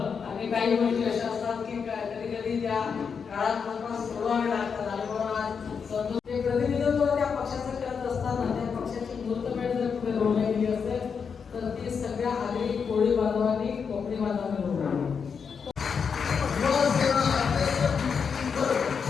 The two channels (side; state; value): right; quieter; 6.2 dB